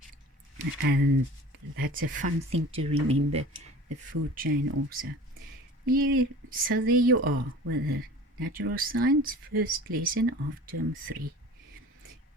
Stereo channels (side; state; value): both; normal; correlation 0.41